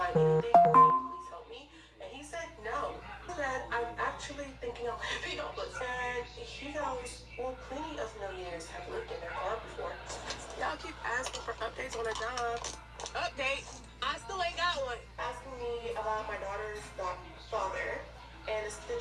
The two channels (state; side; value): identical; both; correlation 1.00